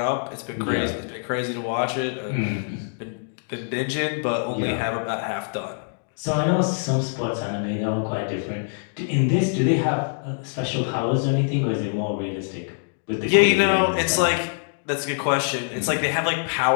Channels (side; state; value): right; silent; digital silence